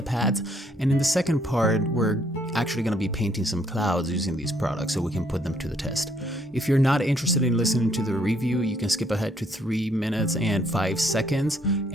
And in the second part, we're actually going to be painting some clouds using these products so we can put them to the test. If you're not interested in listening to the review, you can skip ahead to 3 minutes and 5 seconds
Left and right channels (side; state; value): both; normal; correlation 0.68